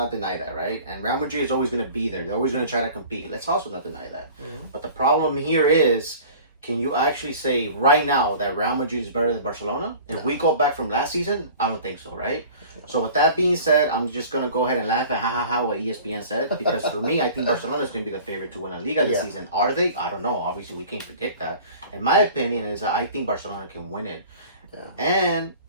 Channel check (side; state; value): both; inverted; correlation -0.44